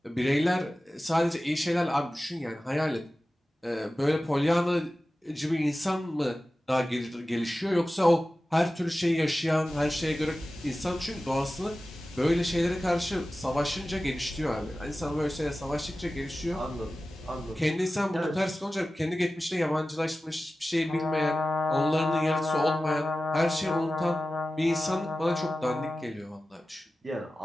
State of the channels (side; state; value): both; normal; correlation 0.95